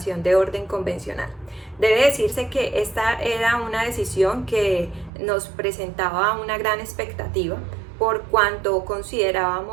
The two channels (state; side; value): drops out; left; at 5.1 s